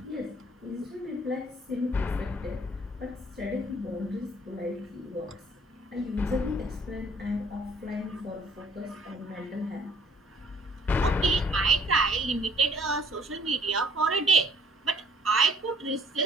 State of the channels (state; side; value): normal; both; correlation 0.59